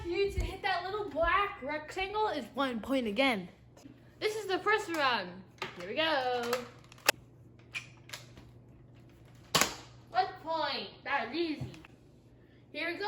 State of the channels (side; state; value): both; identical; correlation 1.00